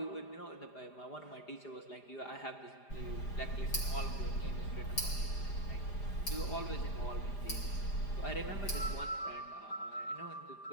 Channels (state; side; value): late; right; 5.0 ms